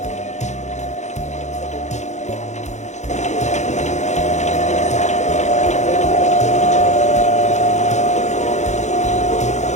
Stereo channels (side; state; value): right; late; 0.34 ms